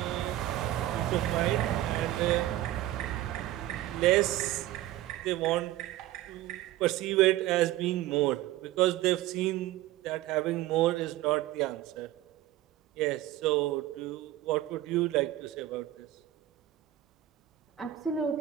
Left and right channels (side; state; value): left; quieter; 14.7 dB